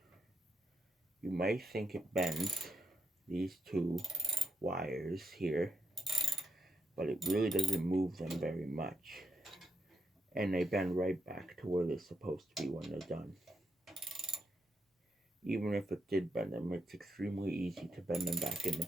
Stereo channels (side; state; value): both; normal; correlation 0.80